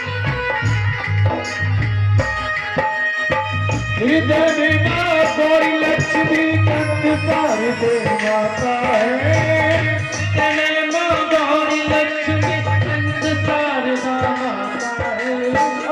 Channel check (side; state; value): both; identical; correlation 1.00